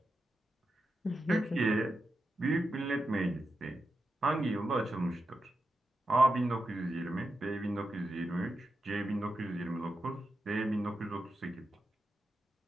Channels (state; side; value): normal; both; correlation 0.88